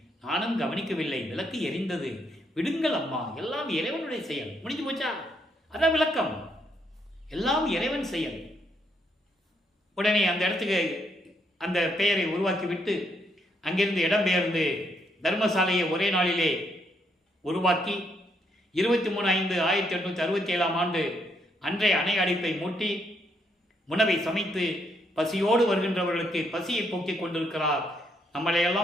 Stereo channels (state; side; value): normal; both; correlation 0.74